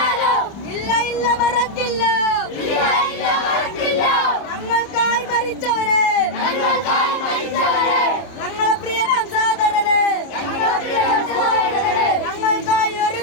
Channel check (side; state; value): right; late; 30 ms